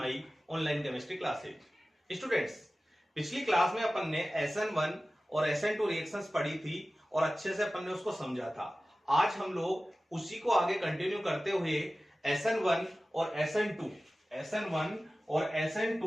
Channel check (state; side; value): normal; both; correlation 0.96